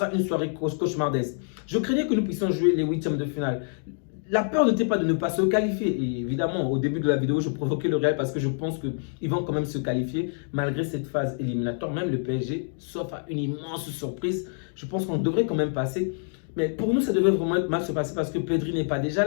une soirée cauchemardesque. Je craignais que nous puissions jouer les huitièmes de finale. La peur n'était pas de ne pas se qualifier. Et évidemment, au début de la vidéo, je provoquais le Real parce que je pense qu'ils vont quand même se qualifier malgré cette phase éliminatoire. Même le PSG, sauf à une immense surprise, je pense qu'on devrait quand même passer. Mais pour nous, ça devait vraiment mal se passer parce que Pedri n'est pas déjà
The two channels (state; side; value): silent; right; 57 dB below the other